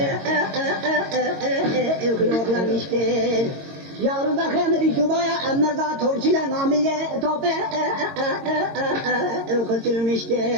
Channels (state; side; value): late; left; 22 ms